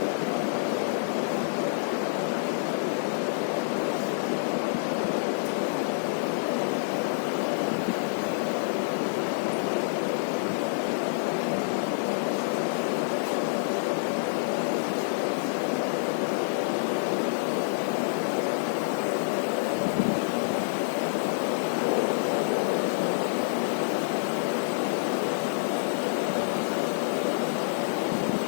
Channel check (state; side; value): silent; right; 60 dB below the other